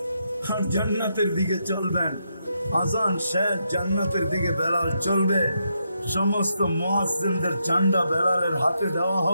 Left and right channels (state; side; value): inverted; both; correlation -0.81